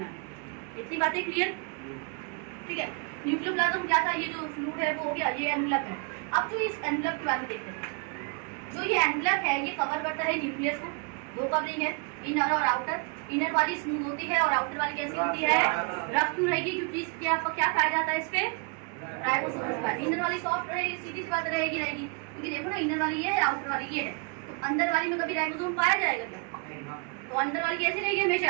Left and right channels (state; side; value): quieter; left; 34.4 dB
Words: है। इतनी बातें क्लियर? ठीक है। न्यूक्लियोप्लाज्म क्या था? ये जो फ्लूइड है वो हो गया, ये एनवलप है। अब जो इस एनवलप के बारे में देखते हैं, जो ये एनवलप है ये कवर करता है न्यूक्लियस को। दो कवरिंग है, इनर और आउटर। इनर वाली स्मूथ होती है और आउटर वाली कैसी होती है? रफ क्यों रहेगी? क्योंकि इसके आपको क्या पाया जाता है? इस पे राइबोसोम का। इनर वाली सॉफ्ट रहेगी, सीधी सी बात रहेगी, क्योंकि देखो ना, इनर वाली ये है, आउटर वाली ये है। तो अंदर वाली में कभी राइबोसोम पाया जाएगा क्या? तो अंदर वाली कैसी रहेगी?